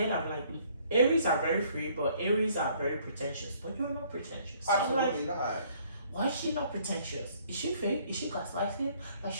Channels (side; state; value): both; inverted; correlation -0.62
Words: I'm like, Aries are very free, but Aries are very pretentious. But you're not pretentious. So absolutely not. Why is she not pretentious? Is she fake? Is she gaslighting? Like,